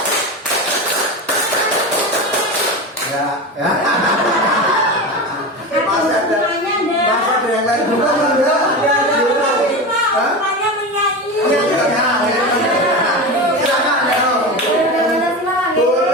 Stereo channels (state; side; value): normal; both; correlation 0.24